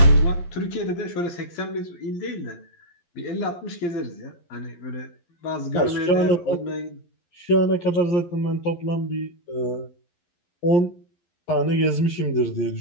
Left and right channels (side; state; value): right; late; 11 ms